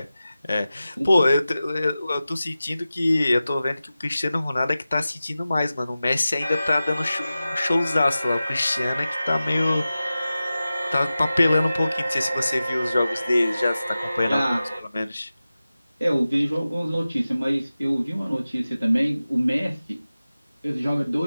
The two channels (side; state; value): both; inverted; correlation -0.95